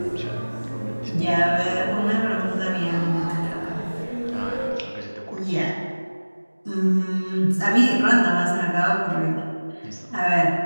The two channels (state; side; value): inverted; both; correlation -1.00